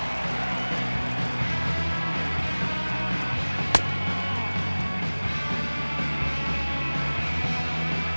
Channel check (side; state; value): both; inverted; correlation -1.00